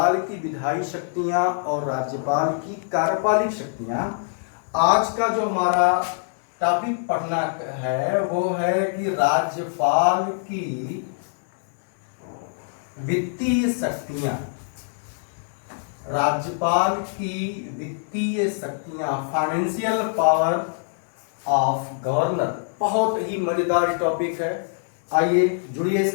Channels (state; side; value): silent; right; digital silence